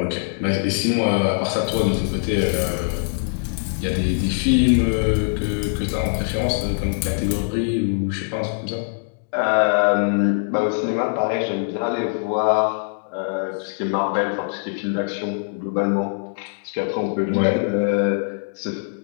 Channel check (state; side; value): silent; right; digital silence